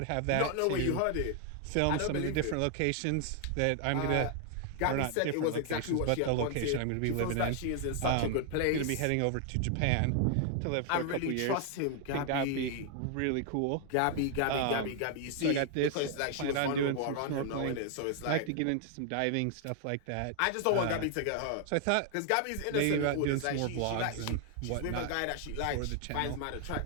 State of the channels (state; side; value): different; both; correlation 0.00